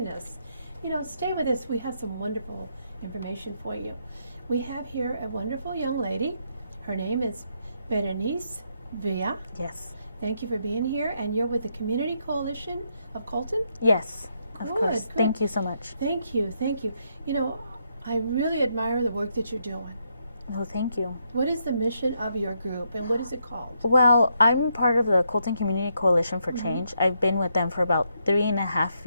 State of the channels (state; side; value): inverted; both; correlation -0.78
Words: us. Stay with us. We have some wonderful information for you. We have here a wonderful young lady. Her name is Berenice Villa. Yes. Thank you for being here, and you're with the Community Coalition of Colton? Yes, of Good, course. good. Thank you so much. Thank you. I really admire the work that you're doing. Oh, thank you. What is the mission of your group, and what is it called? Well, I'm part of the Colton Community Coalition for Change. I've been with them for about 3.5